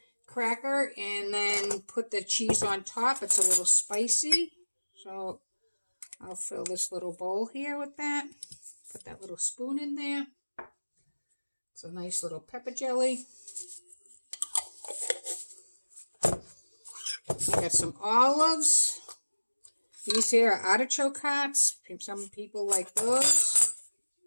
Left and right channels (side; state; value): both; inverted; correlation -1.00